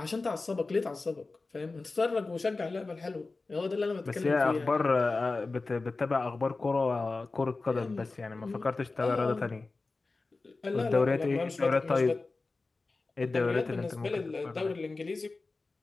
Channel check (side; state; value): right; quieter; 3.6 dB